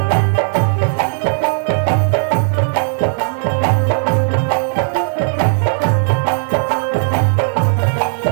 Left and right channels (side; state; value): left; silent; digital silence